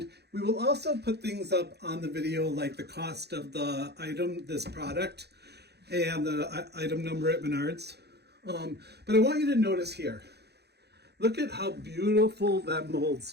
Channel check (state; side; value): late; left; 0.48 ms